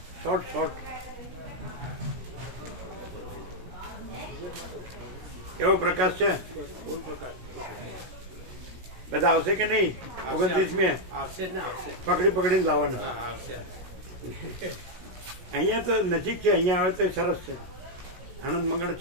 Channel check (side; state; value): left; late; 16 ms